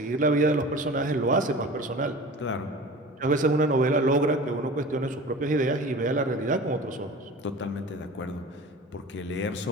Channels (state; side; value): normal; both; correlation 0.37